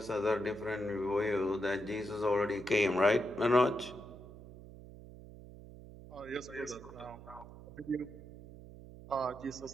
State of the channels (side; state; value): right; noise; hum, 16 dB below the sound